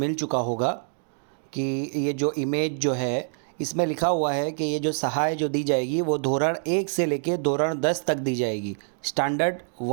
चुका होगा कि ये जो इमेज जो है इसमें लिखा हुआ है कि ये जो सहाय जो दी जाएगी वो धोरण 1 से लेके धोरण 10 तक दी जाएगी, स्टैंडर्ड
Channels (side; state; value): left; silent; digital silence